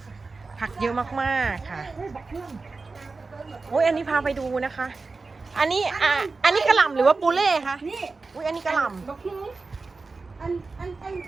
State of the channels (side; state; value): left; quieter; 4.0 dB